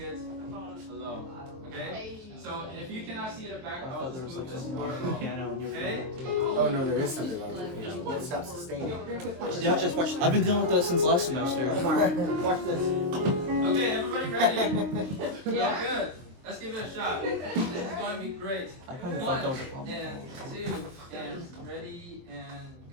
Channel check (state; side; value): late; left; 23 ms